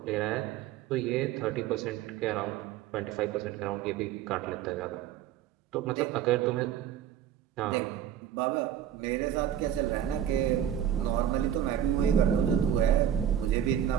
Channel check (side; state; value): left; quieter; 10.2 dB